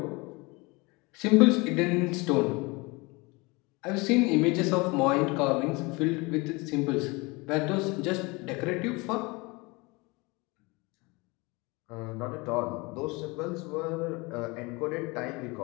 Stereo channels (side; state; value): right; quieter; 25.8 dB